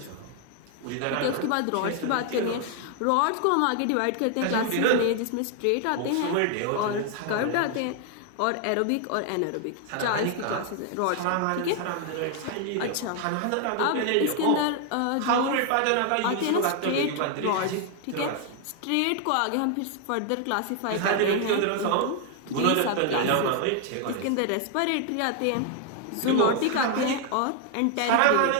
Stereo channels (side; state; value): both; different; correlation 0.00